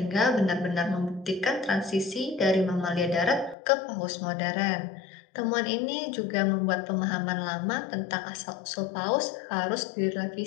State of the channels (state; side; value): drops out; right; at 3.6 s